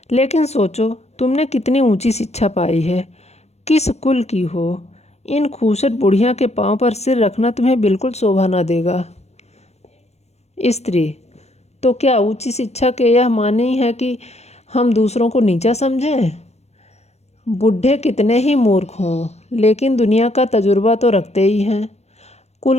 लेकिन सोचो तुमने कितनी ऊंची शिक्षा पाई है, किस कुल की हो। इन खूसट बुढ़िया के पांव पर सिर रखना तुम्हें बिल्कुल शोभा ना देगा। स्त्री तो क्या ऊंची शिक्षा के यह माने ही है कि हम दूसरों को नीचा समझें? बूढ़े कितने ही मूर्ख हों, लेकिन दुनिया का तजुर्बा तो रखते ही हैं।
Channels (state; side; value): late; right; 0.31 ms